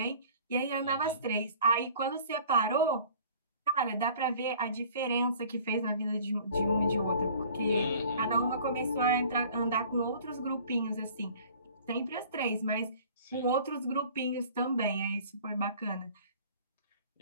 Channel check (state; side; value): inverted; both; correlation -0.49